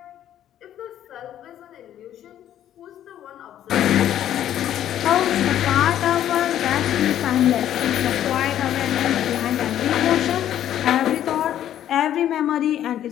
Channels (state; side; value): quieter; right; 11.2 dB